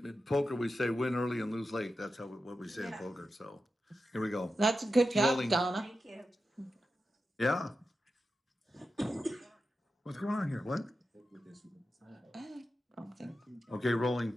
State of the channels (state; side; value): normal; both; correlation 0.90